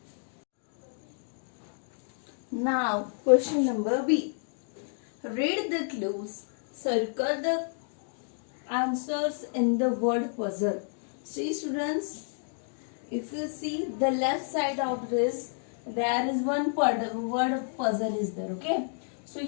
Now, question number B. Read the clues. Circle the answers in the word puzzle. See students, if you see the left side of this, there is one word puzzle is there. Okay. So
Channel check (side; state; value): right; silent; digital silence